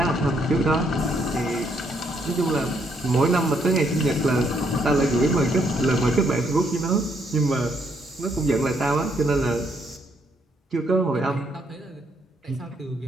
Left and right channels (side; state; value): both; normal; correlation 0.72